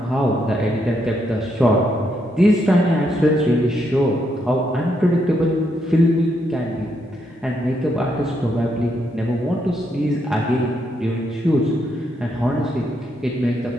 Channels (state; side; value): normal; both; correlation 0.77